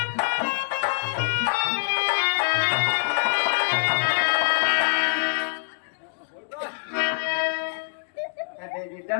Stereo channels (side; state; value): right; silent; digital silence